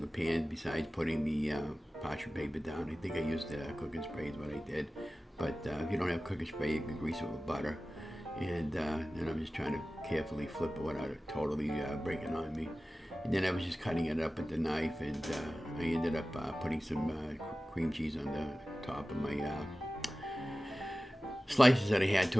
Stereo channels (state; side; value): normal; both; correlation 0.96